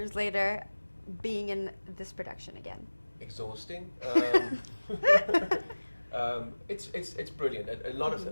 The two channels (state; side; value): inverted; both; correlation -1.00